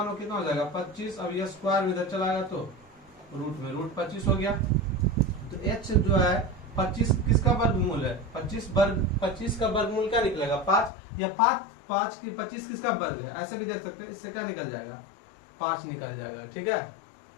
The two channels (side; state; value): right; drops out; at 10.9 s